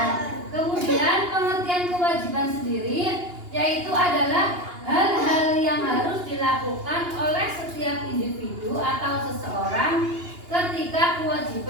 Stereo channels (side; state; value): left; late; 2.8 ms